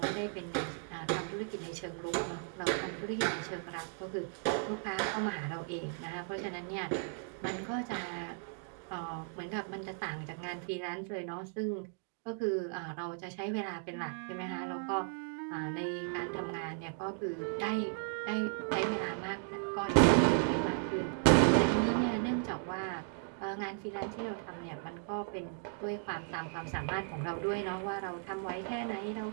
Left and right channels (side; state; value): left; silent; 54 dB below the other